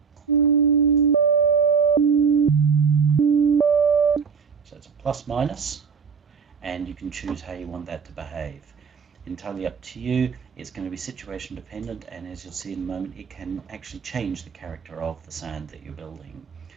so it's a plus minus, and you can choose how you want that to behave. Entirely up to you. It's going to be situation dependent, and as you'll see in a moment, it can actually change the character of the sound that you're building.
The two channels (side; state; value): left; quieter; 6.1 dB